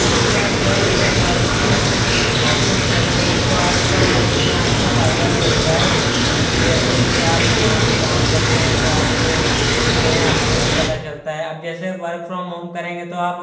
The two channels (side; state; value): both; identical; correlation 1.00